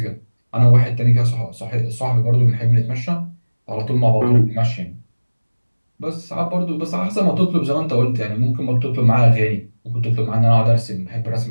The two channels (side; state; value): both; inverted; correlation -1.00